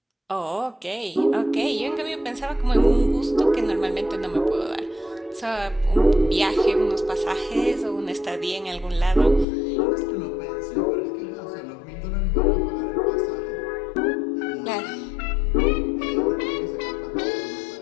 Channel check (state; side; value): drops out; right; at 9.5 s